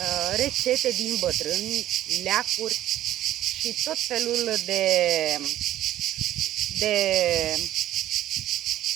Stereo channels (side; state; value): left; quieter; 13.2 dB